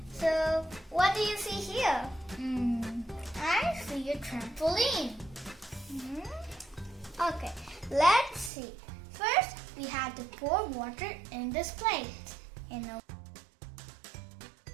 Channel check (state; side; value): drops out; left; at 8.5 s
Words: so what do you see here? I see a trampoline. Okay, let's see. First, we have to pour water in this plate.